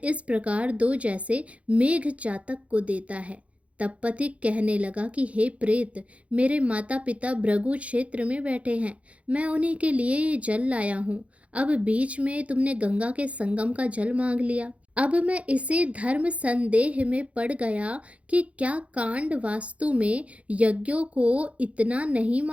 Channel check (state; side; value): late; left; 0.064 ms